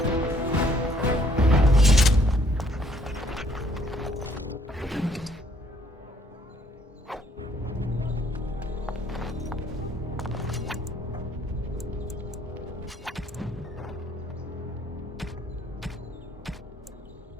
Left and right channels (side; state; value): both; normal; correlation 0.64